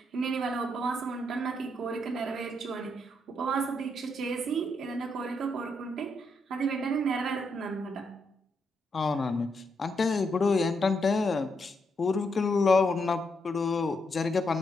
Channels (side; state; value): both; normal; correlation 0.79